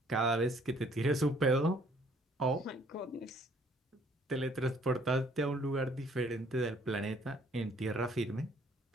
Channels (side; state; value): both; normal; correlation 0.61